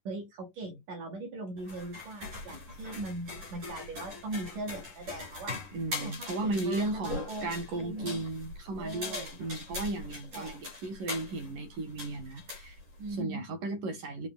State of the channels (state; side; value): late; left; 11 ms